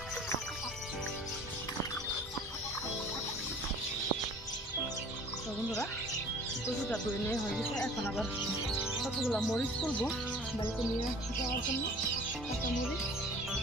দাও বন্ধুরা, কচুটা ধুয়ে নিয়ে হয়ে গেছে। এখন আবার কতগুলো মরিচ তুলবো বাড়িতে নিয়ে যাওয়ার জন্য। কাঁচা মরিচ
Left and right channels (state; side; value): normal; both; correlation 0.47